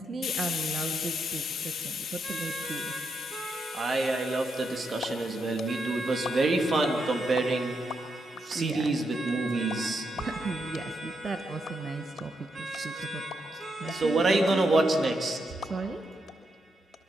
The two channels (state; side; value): normal; both; correlation 0.82